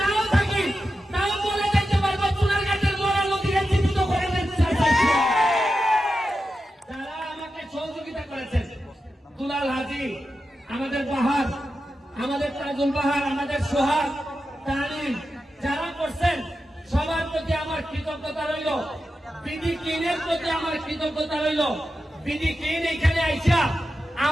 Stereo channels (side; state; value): both; normal; correlation 0.90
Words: নাও থাকি, তাও বলে যাইতে পারবো সোনারঘাটের মরা নদীকে জীবিত করে যারা আমাকে সহযোগিতা করেছেন। দুলাল হাজি, আমাদের বাহার, আমাদের তাজুল বাহার, আমাদের সোহাগ, তানিম, যারা করছেন সবার প্রতি আমার কৃতজ্ঞতা রইল। বিডি ক্লিনের প্রতি আমার কৃতজ্ঞতা রইল। বিডি ক্লিন এখানে আইসা